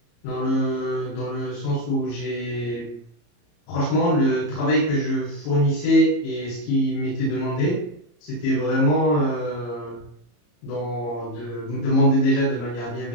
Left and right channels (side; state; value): right; late; 34 ms